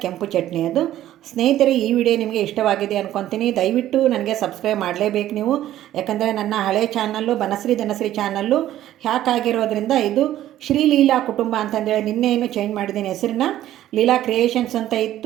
ಕೆಂಪು ಚಟ್ನಿ ಅದು. ಸ್ನೇಹಿತರೆ, ಈ ವಿಡಿಯೋ ನಿಮಗೆ ಇಷ್ಟವಾಗಿದೆ ಅಂದ್ಕೊತೀನಿ. ದಯವಿಟ್ಟು ನನಗೆ ಸಬ್ಸ್ಕ್ರೈಬ್ ಮಾಡಲೇಬೇಕು ನೀವು. ಯಾಕಂದರೆ ನನ್ನ ಹಳೆ channel Banashree Dhanashree channel hack ಆಗಿರೋದ್ರಿಂದ ಇದು ಶ್ರೀ ಲೀಲಾ ಕುಟುಂಬ ಅಂತಂದೇಳಿ ನಿನ್ನೆ ಏನು ಚೇಂಜ್ ಮಾಡಿದ್ದೀನಿ ಹೆಸರನ್ನ. ಲೀಲಾ ಕ್ರಿಯೇಷನ್ಸ್ ಅಂತ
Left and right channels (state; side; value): quieter; left; 13.0 dB